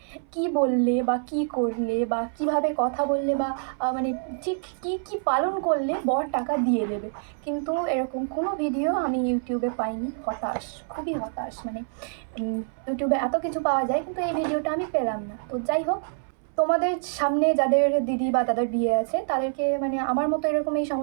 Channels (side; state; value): left; silent; 61 dB below the other